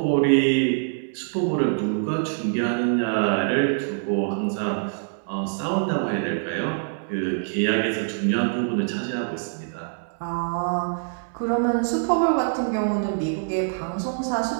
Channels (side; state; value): left; silent; 62 dB below the other